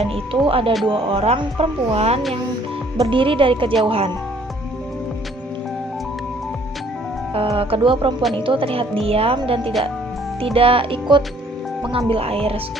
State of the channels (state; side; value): normal; both; correlation 0.60